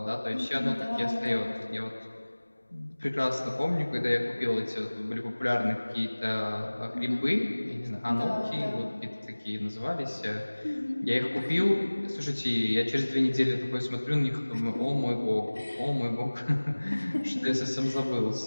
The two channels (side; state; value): both; inverted; correlation -1.00